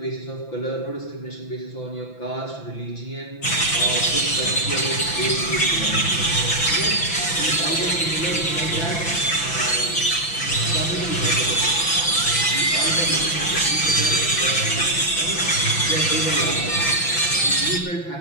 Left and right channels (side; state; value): right; late; 6.0 ms